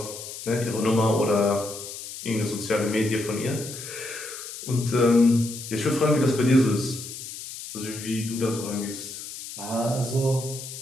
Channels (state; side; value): noise; left; hiss, 11 dB below the sound